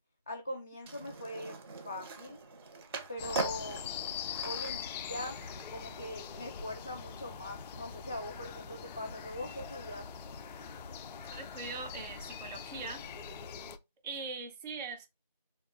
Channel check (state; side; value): inverted; both; correlation -0.44